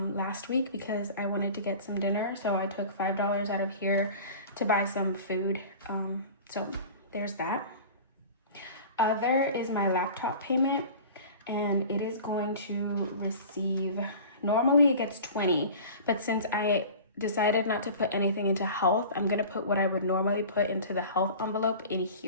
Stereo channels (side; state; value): both; inverted; correlation -0.39